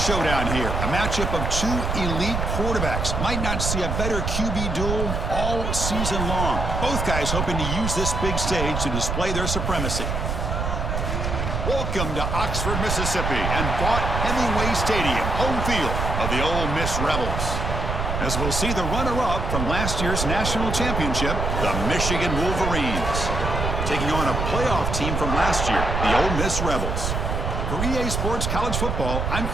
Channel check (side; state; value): right; noise; rumble, 1 dB below the sound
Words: here. A matchup of two elite quarterbacks. Might not see a better QB duel all season long. Both guys hoping to use this big stage to display their supremacy. Welcome to Oxford, Mississippi, and Vaught Hemingway Stadium, home field of the Ole Miss Rebels. As we'll see the runner-up from last year's national championship, the Michigan Wolverines, taking on a playoff team from last year, the Ole Miss Rebels. For EA Sports College Football, I'm